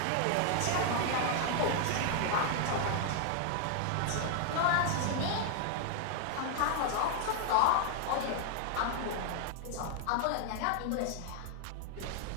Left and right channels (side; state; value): both; different; correlation 0.00